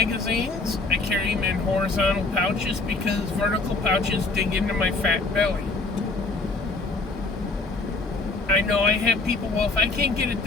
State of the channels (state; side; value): quieter; right; 3.5 dB